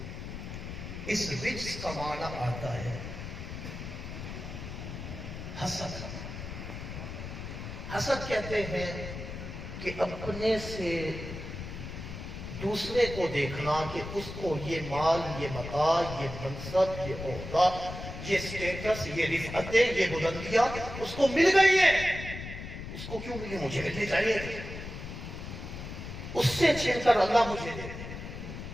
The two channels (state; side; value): noise; left; rumble, 9 dB below the sound